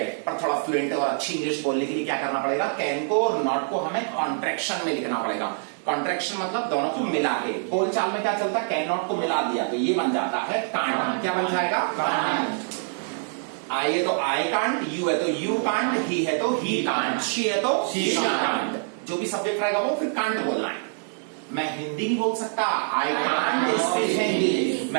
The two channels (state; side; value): silent; left; 62 dB below the other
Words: पर थोड़ा फ्लुएंट और अच्छी इंग्लिश बोलने के लिए क्या करना पड़ेगा? कैन को और नॉट को हमें कॉन्ट्रैक्शन में लिखना पड़ेगा। कॉन्ट्रैक्शन मतलब दोनों को मिला के। बोलचाल में क्या चलता है? कैन नॉट को मिला दिया तो ये बन जाता है कांट। क्या बन जाएगा? कांट। आई है तो आई कांट, यू है तो यू कांट, ही है तो ही कांट, शी है तो शी कांट। जो भी सब्जेक्ट रहेगा वो फिर कांट बोलना है। मैं हिंदी नहीं बोल सकता, आई कांट स्पीक हिंदी।